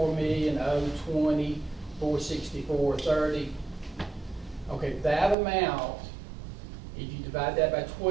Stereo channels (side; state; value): left; drops out; at 5.4 s